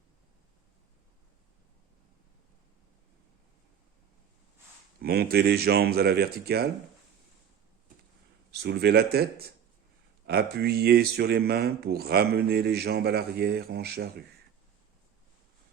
Montez les jambes à la verticale, soulevez la tête, appuyez sur les mains pour ramener les jambes à l'arrière en charrue.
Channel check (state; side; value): quieter; left; 8.5 dB